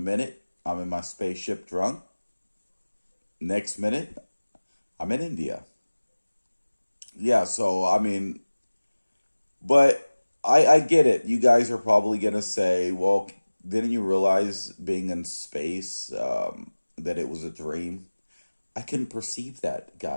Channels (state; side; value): inverted; both; correlation -1.00